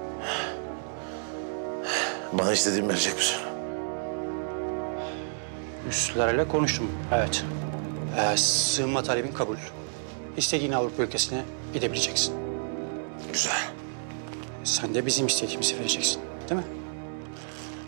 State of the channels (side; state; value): left; silent; digital silence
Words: Bana istediğimi verecek misin? Üstlerle konuştum, evet. Sığınma talebin kabul. İstediğin Avrupa ülkesine gidebileceksin. Güzel. Sen de bizim istediğimizi vereceksin, değil mi?